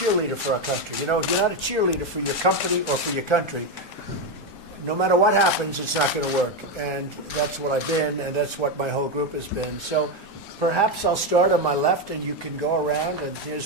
for our country. You know, if you're not a cheerleader for your company or for your country, no matter what happens, it's not going to work. And that's what I've been, and that's what my whole group has been. So perhaps I'll start on my left, and you can go around. And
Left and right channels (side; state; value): both; normal; correlation 0.09